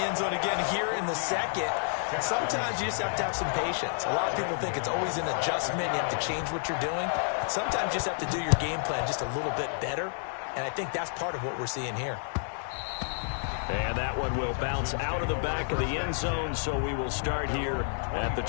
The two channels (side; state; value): right; silent; digital silence